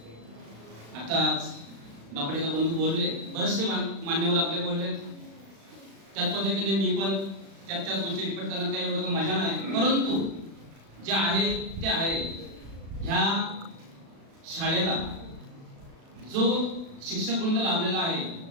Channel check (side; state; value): left; late; 36 ms